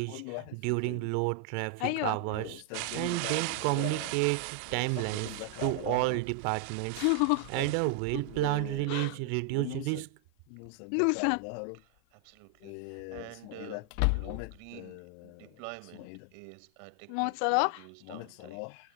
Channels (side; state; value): both; different; correlation 0.00